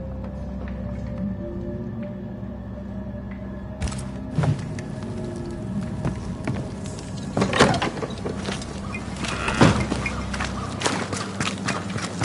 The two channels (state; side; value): identical; both; correlation 1.00